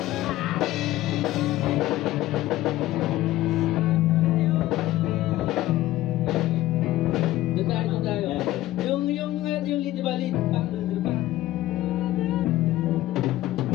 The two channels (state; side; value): quieter; right; 15.5 dB